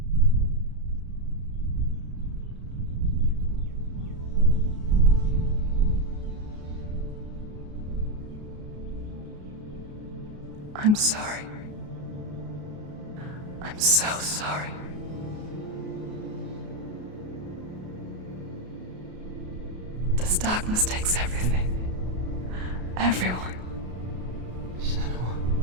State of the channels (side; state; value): left; late; 33 ms